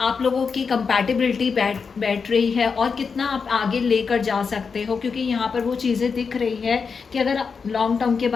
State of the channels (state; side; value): quieter; right; 5.5 dB